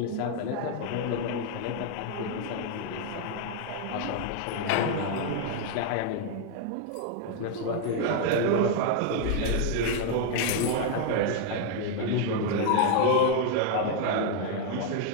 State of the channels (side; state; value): both; different; correlation 0.00